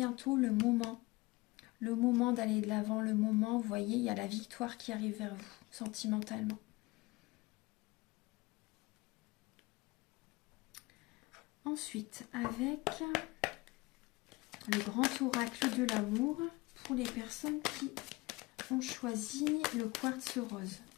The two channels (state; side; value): quieter; right; 22.1 dB